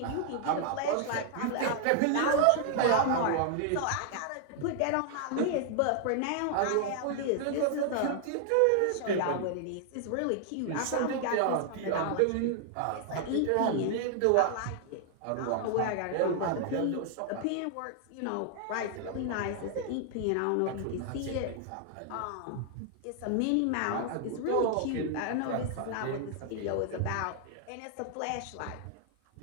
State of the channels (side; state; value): both; different; correlation 0.00